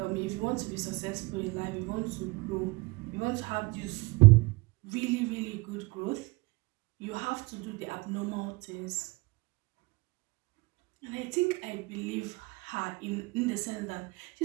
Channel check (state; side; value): quieter; left; 24.4 dB